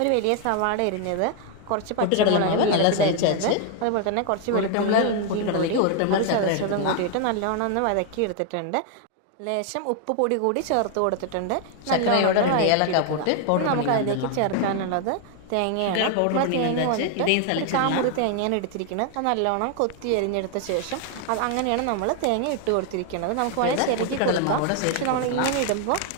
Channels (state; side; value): different; both; correlation 0.00